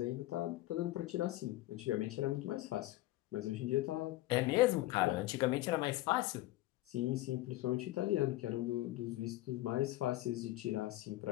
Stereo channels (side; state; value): right; quieter; 17.0 dB